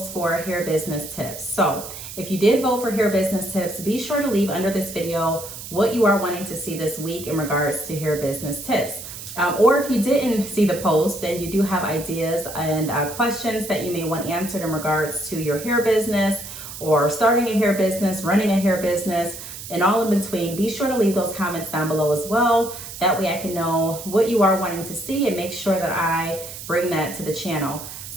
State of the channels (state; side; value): noise; right; hiss, 11 dB below the sound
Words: for hair business tips. So if you did vote for hair business tips, be sure to leave under this video what you are wanting to see this week in regards to hair business tips. Or if you didn't see the post, then you do have ideas and questions that you may want answered in regards to your hair business or starting a hair business, running a hair business, and all in between. Be sure to leave those comments down below as well. That way I can know what you are wanting to see and make sure that I bring that to the channel.